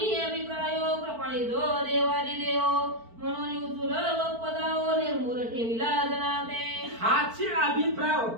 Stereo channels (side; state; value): left; late; 4.5 ms